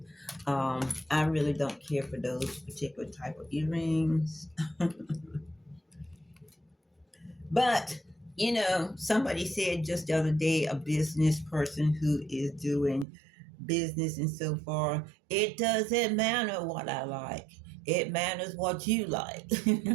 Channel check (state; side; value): drops out; left; at 13.1 s